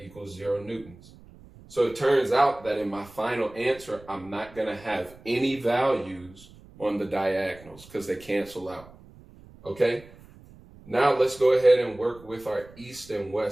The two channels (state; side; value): noise; right; rumble, 22 dB below the sound